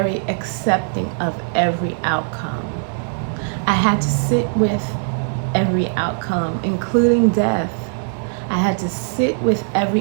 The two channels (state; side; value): silent; left; digital silence